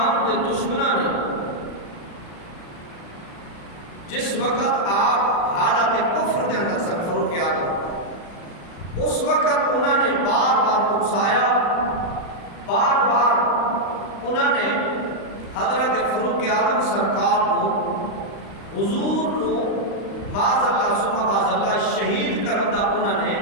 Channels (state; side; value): late; right; 35 ms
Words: کے دشمنوں نے جس وقت آپ حالت کفر کے اندر سن فاروق اعظم، اس وقت انہوں نے بار بار اکسایا، بار بار انہوں نے حضرت فاروق اعظم سرکار کو حضور نو معاذ اللہ ثم معاذ اللہ شہید کرن دا انہوں نے